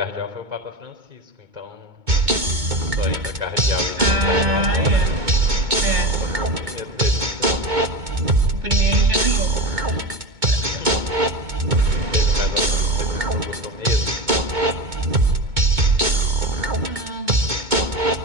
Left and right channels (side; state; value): left; late; 2.2 ms